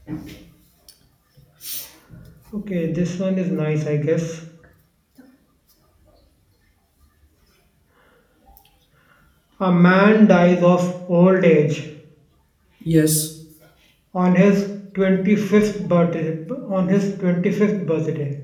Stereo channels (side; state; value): both; identical; correlation 1.00